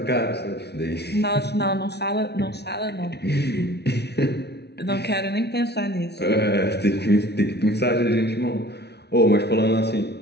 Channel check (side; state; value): right; late; 0.49 ms